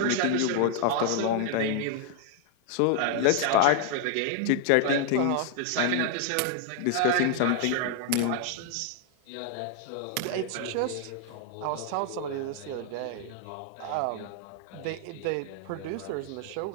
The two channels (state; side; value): different; both; correlation 0.00